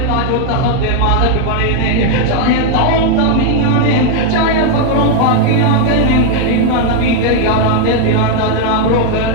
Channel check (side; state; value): both; different; correlation 0.00